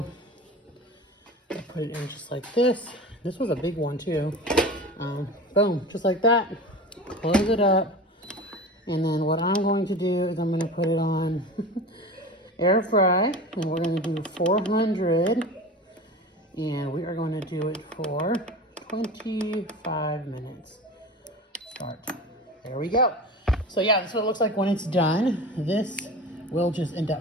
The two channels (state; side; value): normal; both; correlation 0.33